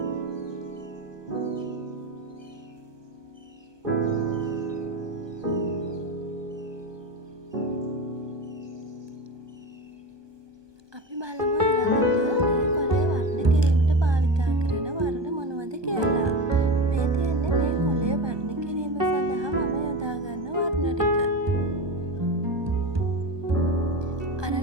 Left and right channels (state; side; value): late; left; 1.2 ms